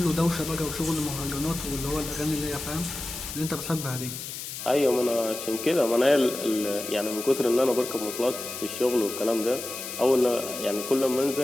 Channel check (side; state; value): left; noise; hiss, 8 dB below the sound